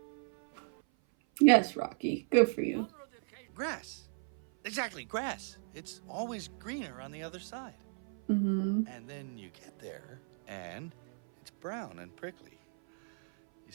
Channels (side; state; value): left; silent; 54 dB below the other